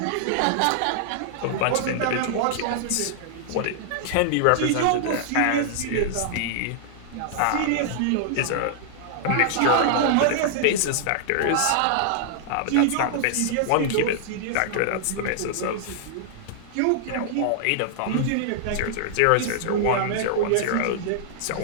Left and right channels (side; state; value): both; different; correlation -0.01